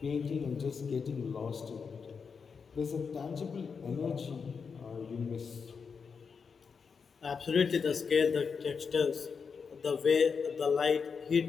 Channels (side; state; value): right; quieter; 5.7 dB